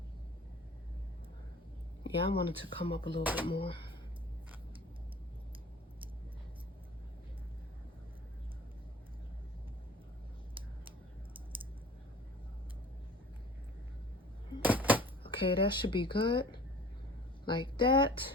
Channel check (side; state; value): both; normal; correlation 0.45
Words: Yeah, I wanted to come up a little bit more. Okay, that should be good. Like that.